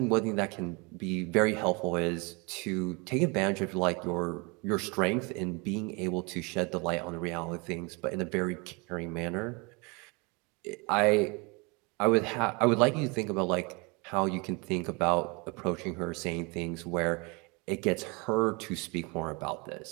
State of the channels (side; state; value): left; quieter; 29.2 dB